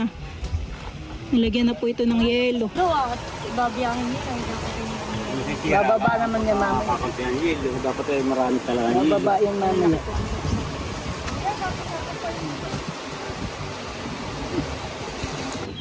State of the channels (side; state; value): both; identical; correlation 1.00